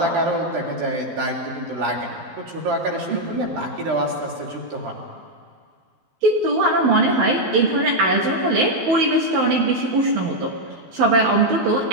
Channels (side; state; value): left; late; 12 ms